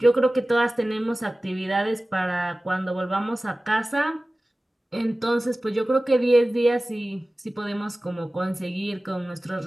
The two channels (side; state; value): both; normal; correlation 0.97